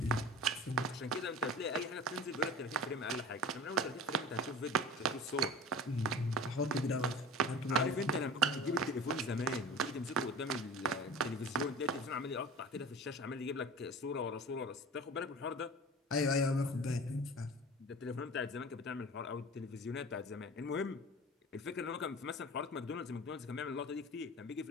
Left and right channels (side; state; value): both; normal; correlation 0.38